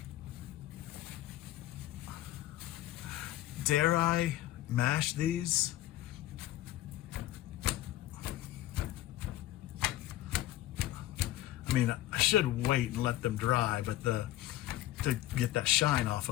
Dare I mash these? I mean, I should wait and let them dry, but to get that shine off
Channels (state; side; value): quieter; right; 15.1 dB